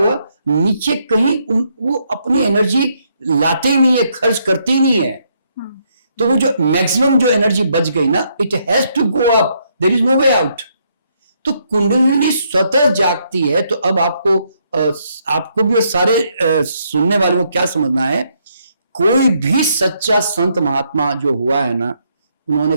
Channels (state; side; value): inverted; both; correlation -0.74